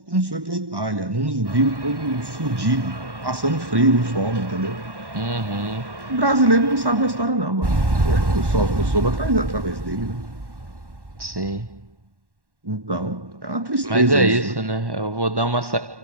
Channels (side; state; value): left; late; 1.1 ms